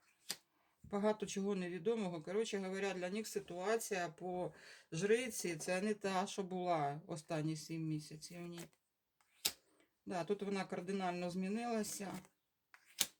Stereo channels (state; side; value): identical; both; correlation 1.00